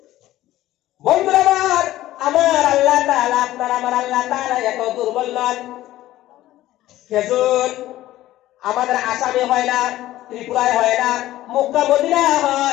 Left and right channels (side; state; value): right; quieter; 15.0 dB